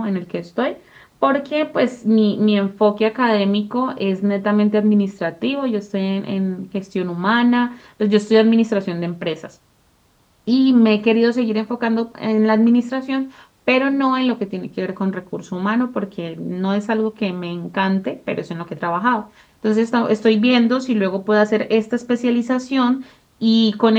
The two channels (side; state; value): both; identical; correlation 1.00